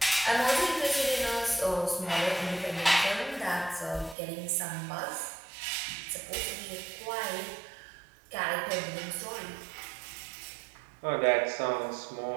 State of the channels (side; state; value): left; drops out; at 4.2 s